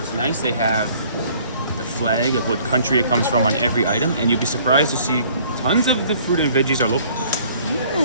nice they have the flag of what country it comes from on every item, and you'll be surprised to see tons of the fruit and veggies are local.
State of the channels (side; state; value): both; inverted; correlation -0.57